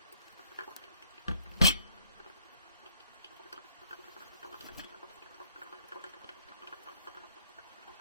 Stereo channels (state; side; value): inverted; both; correlation -0.64